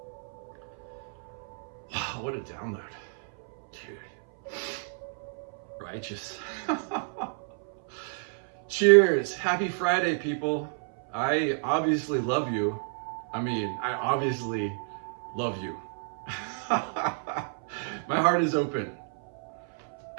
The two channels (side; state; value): left; silent; 57 dB below the other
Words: Wow, what a download. Dude. Righteous. Cheers. Happy Friday, people. I obviously love you. I obviously love you. My heart is open.